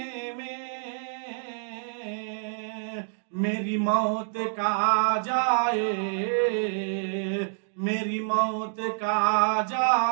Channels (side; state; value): left; silent; digital silence